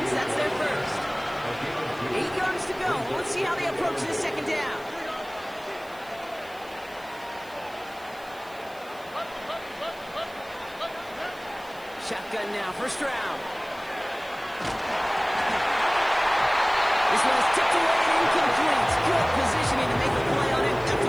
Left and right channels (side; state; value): right; noise; hiss, 24 dB below the sound